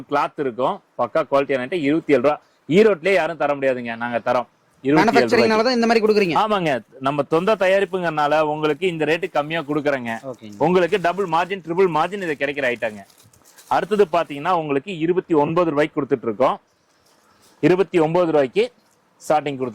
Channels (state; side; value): identical; both; correlation 1.00